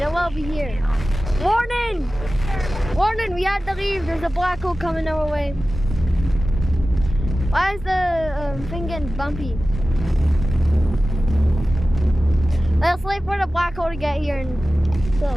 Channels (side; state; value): both; normal; correlation 0.96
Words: it will be here. Warning! Warning, we have to leave. There's a black hole coming our way. Why is the thing getting bumpy? Let's wait for the black hole to get here and so